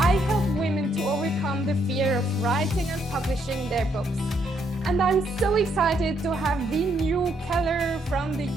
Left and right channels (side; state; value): both; normal; correlation 0.73